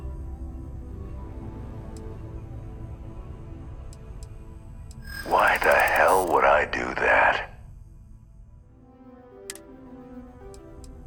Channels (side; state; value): both; identical; correlation 1.00